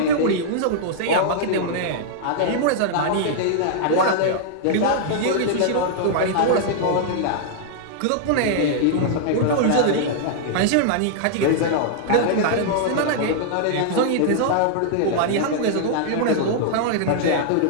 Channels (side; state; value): both; different; correlation -0.01